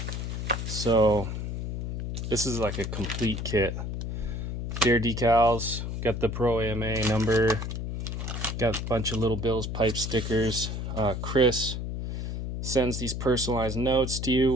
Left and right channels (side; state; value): left; noise; hum, 4 dB below the sound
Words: So this is like a complete kit. Dare decals, got the Pro AMA number, got a bunch of little Bill's pipe stickers. Chris sends these personalized notes to you,